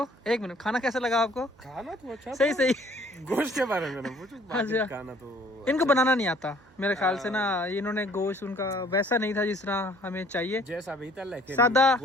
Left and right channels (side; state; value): right; noise; hum, 29 dB below the sound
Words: एक मिनट, खाना कैसा लगा आपको? खाना तो अच्छा सही सही। गोश्त के बारे में ना पूछो, अच्छा। खाना तो इनको बनाना नहीं आता मेरे ख्याल से ना, इन्होंने गोश्त उनका वैसा नहीं था जिस तरह हमें चाहिए, जैसा भी था, लेकिन सादा